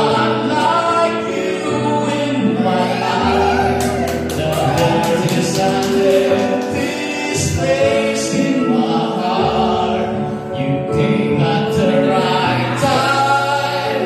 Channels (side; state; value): both; identical; correlation 1.00